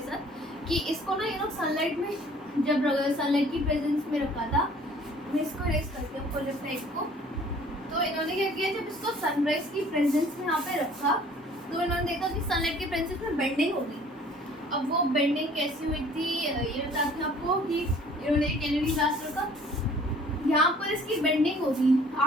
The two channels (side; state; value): both; normal; correlation 0.53